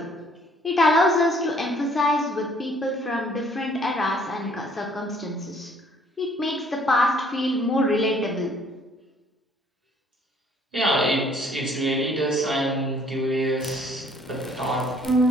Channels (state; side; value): normal; both; correlation 0.60